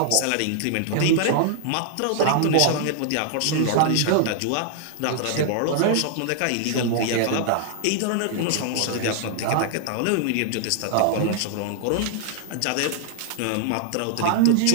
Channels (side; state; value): both; different; correlation 0.00